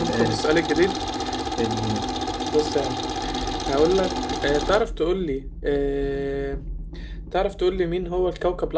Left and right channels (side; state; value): both; identical; correlation 1.00